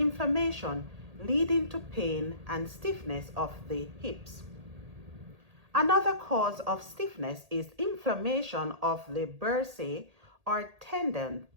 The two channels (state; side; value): late; left; 1.8 ms